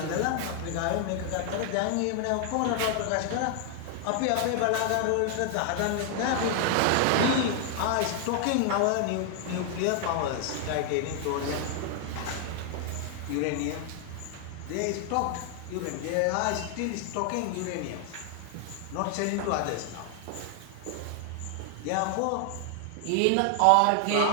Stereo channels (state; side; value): different; both; correlation 0.00